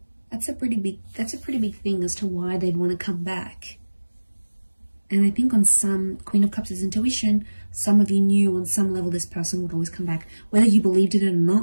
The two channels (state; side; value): inverted; both; correlation -1.00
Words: a pretty big thing as to why they'd want to come back. And I think on some, Queen of Cups is intuition. Some of you knew on some level this person would always come back, whether you believed it or